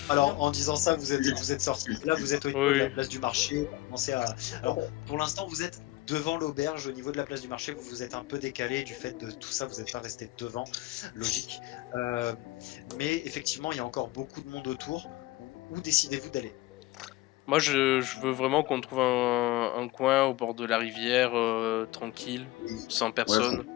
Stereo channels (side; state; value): right; quieter; 18.6 dB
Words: Alors, en disant ça, vous êtes sorti. Là, vous êtes au niveau de la Oui. place du marché. Vous commencez à... Alors, pour l'instant, vous êtes devant l'auberge, au niveau de la place du marché. Vous vous êtes un peu décalé du fait de tout ça. Vous n'êtes pas resté devant, logique. Mais effectivement, il y a encore beaucoup de monde autour. Où décidez-vous d'aller? Moi, je veux vraiment qu'on trouve un coin au bord de la rivière, tranquille, sans personne.